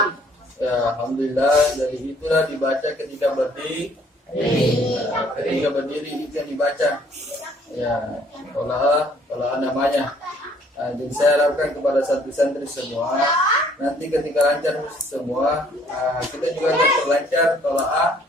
Ya, alhamdulillah, dari itulah dibaca ketika berdiri. Ketika berdiri itu yang dibaca. Ya, tola'ah namanya. Jadi saya harapkan kepada santri semua, nanti ketika lancar semua, kita juga akan terlancar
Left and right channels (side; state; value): both; normal; correlation 0.61